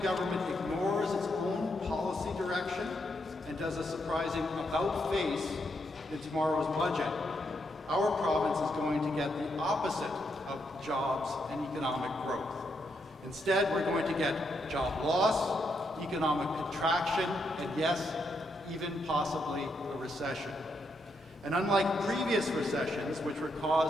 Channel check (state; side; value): normal; both; correlation 0.79